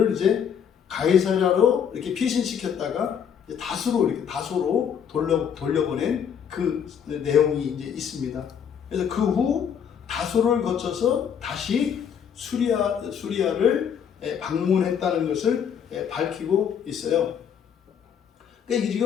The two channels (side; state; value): right; quieter; 8.0 dB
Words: 이제 가이사랴로 이렇게 피신시켰다가 다소로 돌려보낸 그 내용이 이제 있습니다. 그래서 그 후 다소를 거쳐서 다시 수리아를 방문했다는 것을 밝히고 있어요. 그러니까